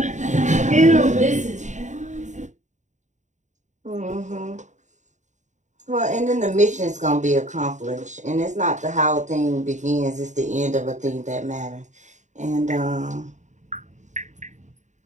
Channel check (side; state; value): left; late; 0.35 ms